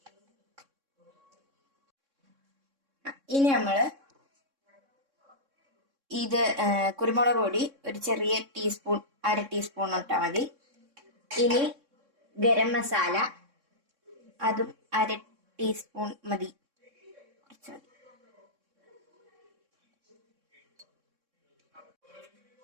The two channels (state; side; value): late; left; 3.6 ms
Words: ഇനി നമ്മള് ഇത് കുരുമുളക് പൊടി ഒരു ചെറിയ ടീസ്പൂൺ, അര ടീസ്പൂൺ ഇട്ടാ മതി. ഇനി ഗരം മസാല അതും അര ടീസ്പൂൺ മതി, കുറച്ച് മതി.